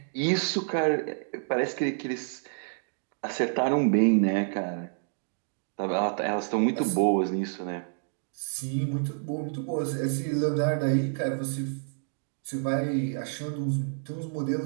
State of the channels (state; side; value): silent; left; digital silence